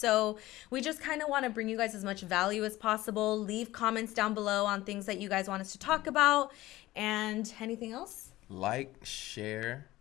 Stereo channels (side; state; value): right; quieter; 17.1 dB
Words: we just kind of want to bring you guys as much value as possible. Leave comments down below on things that you guys want us to talk about. And anything else? Like, share,